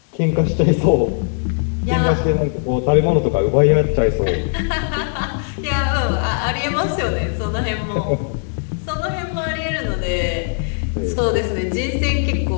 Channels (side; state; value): right; silent; digital silence